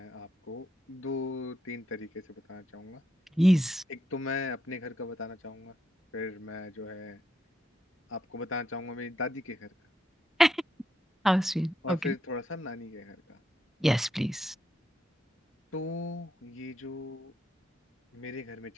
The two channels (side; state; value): both; normal; correlation 0.80